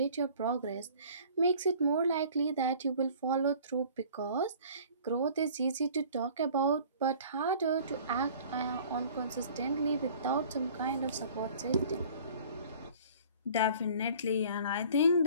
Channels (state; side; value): inverted; both; correlation -0.49